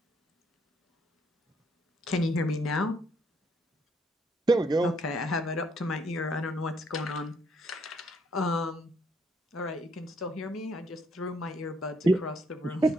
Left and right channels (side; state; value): both; normal; correlation 0.71